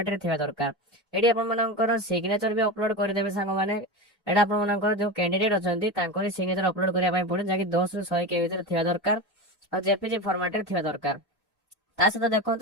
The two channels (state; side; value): normal; both; correlation 0.23